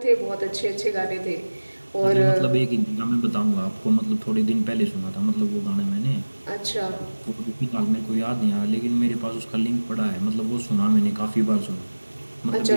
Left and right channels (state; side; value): inverted; both; correlation -1.00